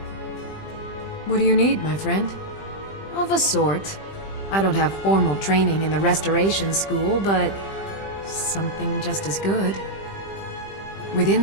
What do you need, my friend? Of a sort. I don't have formal training in the Restoration School, but something just as good.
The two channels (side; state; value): right; late; 20 ms